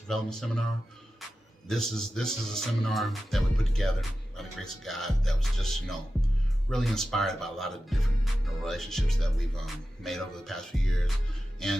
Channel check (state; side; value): normal; both; correlation 0.93